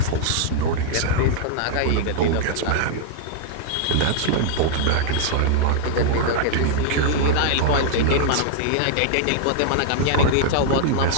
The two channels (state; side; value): different; both; correlation -0.01